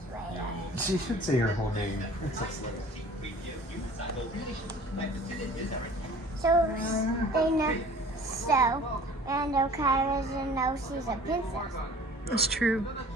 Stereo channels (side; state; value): both; normal; correlation 0.47